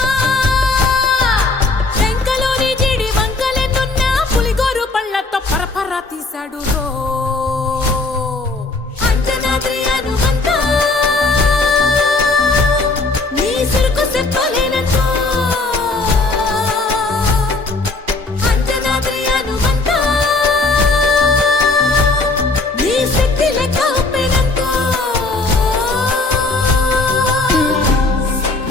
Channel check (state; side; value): quieter; right; 3.4 dB